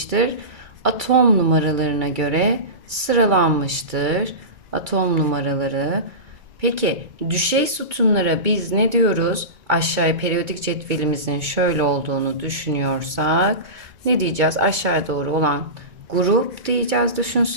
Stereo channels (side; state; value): left; late; 2.2 ms